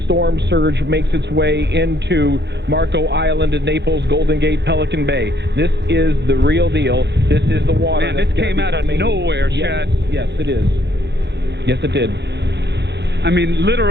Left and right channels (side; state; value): left; late; 0.50 ms